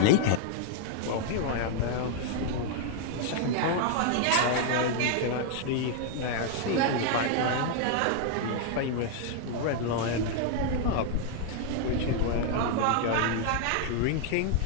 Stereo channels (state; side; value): different; both; correlation 0.00